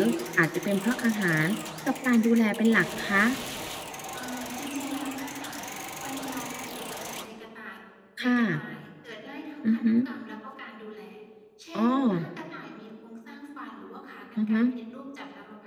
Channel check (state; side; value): identical; both; correlation 1.00